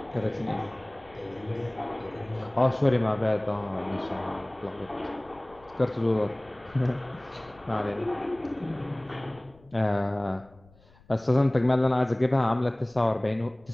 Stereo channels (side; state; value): left; noise; rumble, 27 dB below the sound